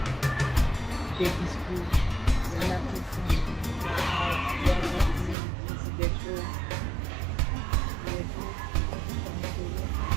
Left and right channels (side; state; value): left; drops out; at 5.4 s